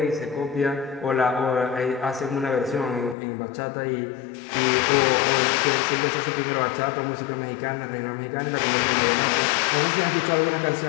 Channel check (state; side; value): drops out; right; at 3.2 s